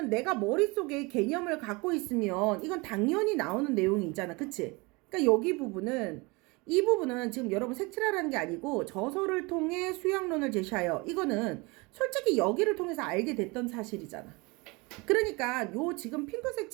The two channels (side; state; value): left; quieter; 26.2 dB